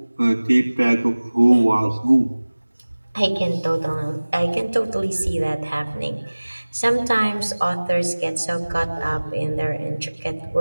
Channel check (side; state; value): both; inverted; correlation -1.00